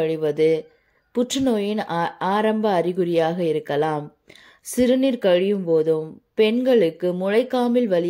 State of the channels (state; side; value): identical; both; correlation 1.00